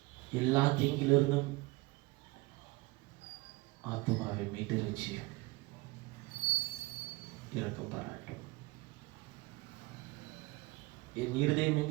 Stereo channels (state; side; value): quieter; left; 22.4 dB